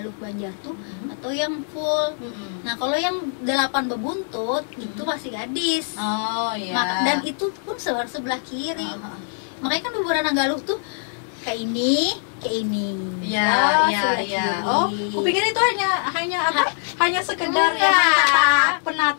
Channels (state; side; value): silent; right; 64 dB below the other